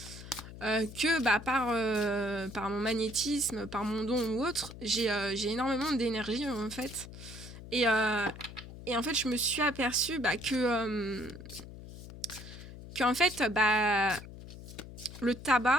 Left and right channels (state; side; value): noise; left; hum, 14 dB below the sound